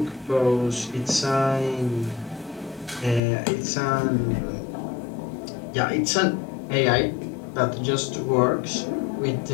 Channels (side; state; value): right; drops out; at 3.2 s